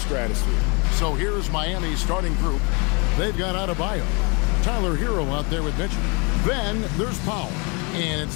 stratosphere. So here's Miami's starting group. They've got Adebayo, Tyler Hero out there with Mitchell. Then there's Powell, and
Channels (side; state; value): right; quieter; 31.4 dB